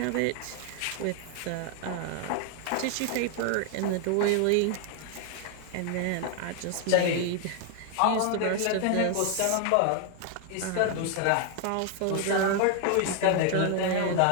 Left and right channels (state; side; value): different; both; correlation 0.00